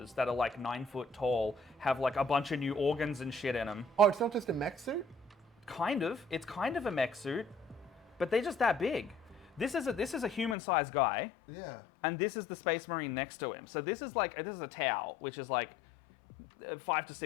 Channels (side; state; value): right; drops out; at 10.6 s